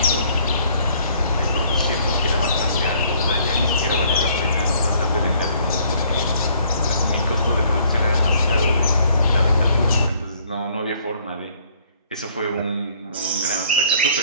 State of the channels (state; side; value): inverted; both; correlation -0.61